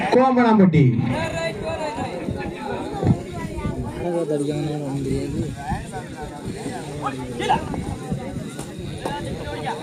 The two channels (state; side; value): identical; both; correlation 1.00